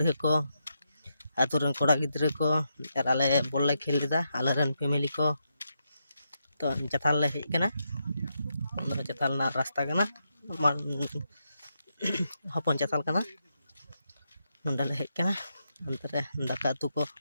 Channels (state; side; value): inverted; both; correlation -0.83